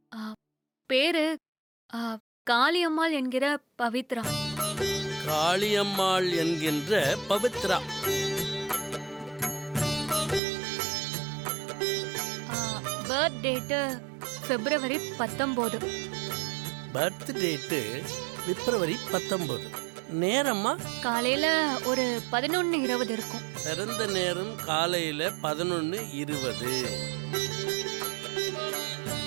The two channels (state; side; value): drops out; left; at 10.4 s